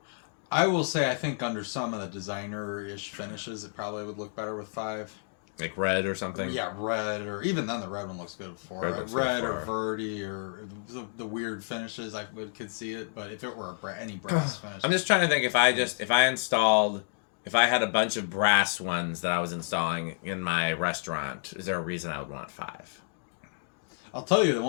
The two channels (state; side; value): silent; right; digital silence